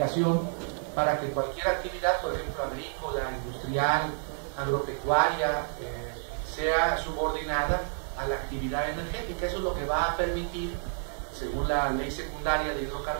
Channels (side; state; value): left; silent; digital silence